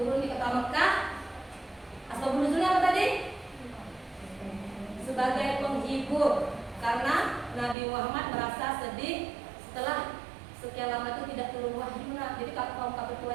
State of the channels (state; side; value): drops out; left; at 7.8 s